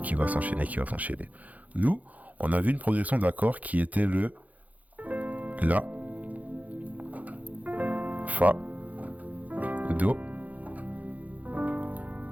qui va s'enchaîner, qui va s'enchaîner. Nous, on a vu une progression d'accords qui était le La, Fa, Do,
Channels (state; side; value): late; left; 0.076 ms